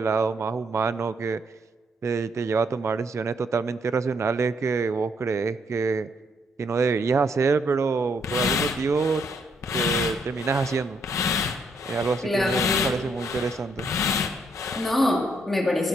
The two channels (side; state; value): both; normal; correlation 0.73